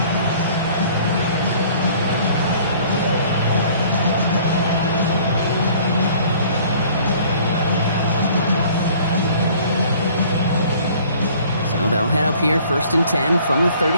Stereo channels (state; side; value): inverted; both; correlation -0.53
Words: So they'll head up here 1st and 10 from the